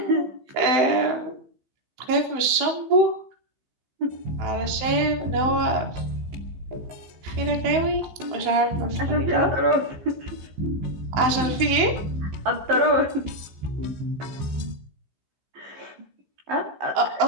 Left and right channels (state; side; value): late; left; 16 ms